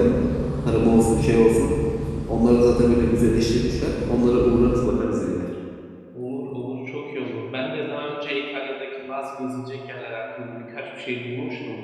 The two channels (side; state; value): both; identical; correlation 1.00